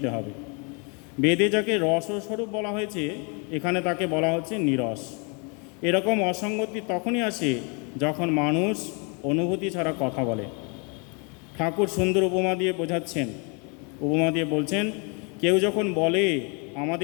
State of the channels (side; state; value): right; quieter; 34.4 dB